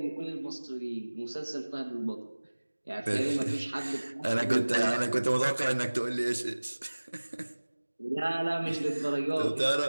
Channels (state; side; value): inverted; both; correlation -1.00